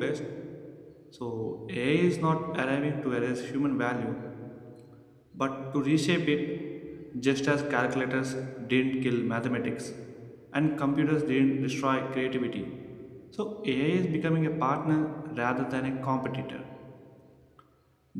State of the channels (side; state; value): both; identical; correlation 1.00